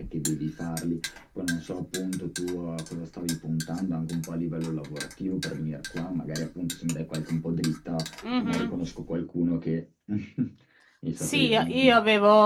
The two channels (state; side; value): identical; both; correlation 1.00